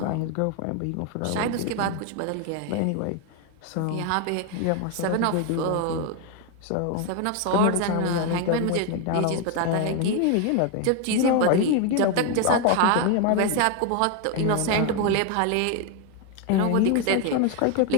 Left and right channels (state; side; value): different; both; correlation 0.01